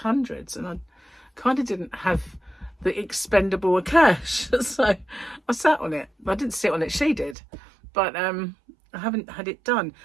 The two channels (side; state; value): left; drops out; at 7.4 s